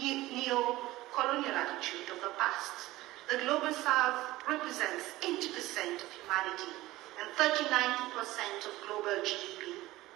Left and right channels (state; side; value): quieter; left; 17.6 dB